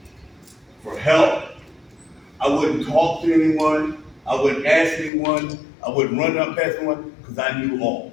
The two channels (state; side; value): drops out; right; at 5.1 s